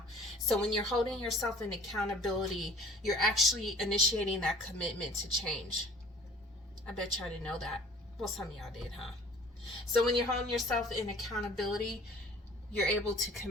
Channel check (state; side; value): normal; both; correlation 0.49